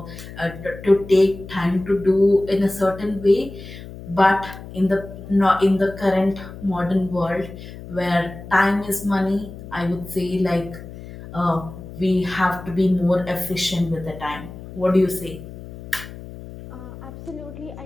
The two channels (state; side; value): noise; left; hum, 14 dB below the sound